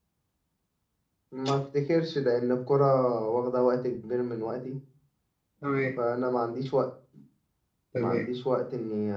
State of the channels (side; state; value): both; identical; correlation 1.00